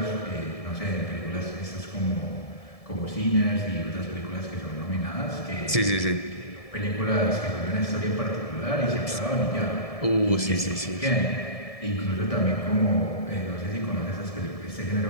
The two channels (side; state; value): right; late; 1.7 ms